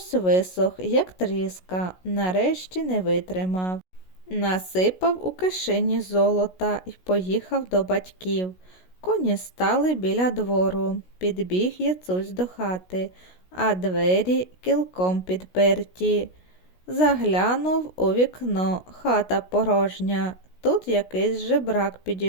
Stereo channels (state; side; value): late; right; 16 ms